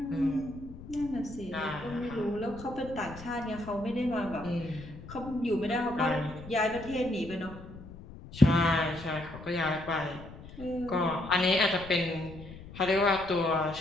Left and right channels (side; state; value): left; noise; rumble, 15 dB below the sound